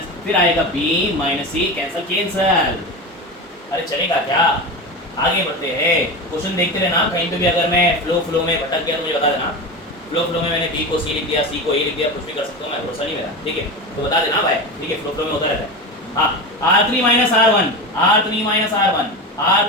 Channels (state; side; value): normal; both; correlation 0.23